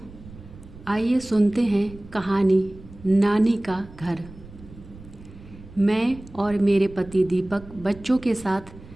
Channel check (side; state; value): right; noise; rumble, 19 dB below the sound